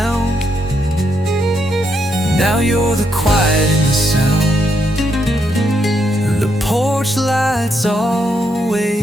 now you're the quiet in the sound. The porch light's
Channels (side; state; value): both; normal; correlation 0.79